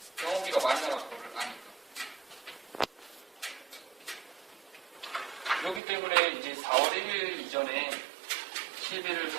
병원비가 많이 나갈 거를 아니까. 그렇기 때문에 이제 4월 1일 이전에 실비를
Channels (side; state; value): left; drops out; at 5.8 s